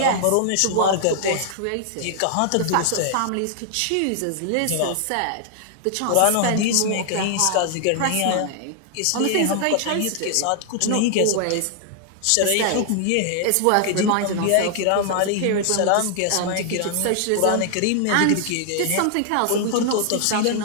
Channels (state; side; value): different; both; correlation 0.00